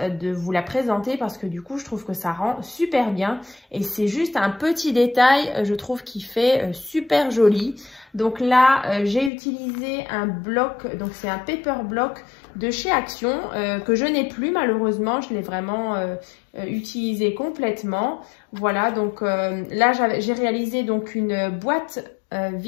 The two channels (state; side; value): drops out; right; at 9.3 s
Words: de vous la présenter parce que du coup, je trouve que ça rend super bien. Et c'est juste un petit détail, je trouve, qui fait super joli. Donc là, j'ai utilisé un bloc, donc c'est un paper block de chez Action que je n'ai plus malheureusement, je l'ai vraiment utilisé complètement. Voilà, donc là j'ai réalisé donc une boîte